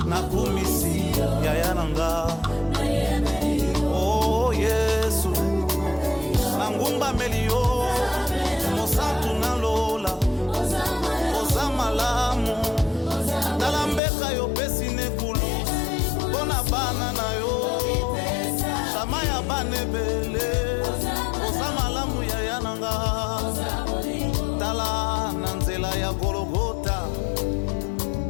nakumisi yaya na nga oh Yesu nangumbameli yo mosantu nalola oza malamu tala mbeka yo pesi nekulu mpona bana na yo shama ya bana ebele oza malamu yaya na nga tala na nzela ya Golgota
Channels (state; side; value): drops out; right; at 14.0 s